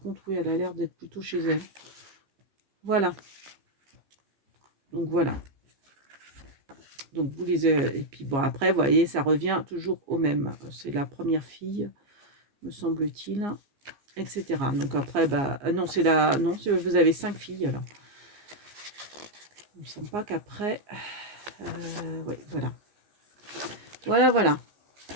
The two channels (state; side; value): late; left; 15 ms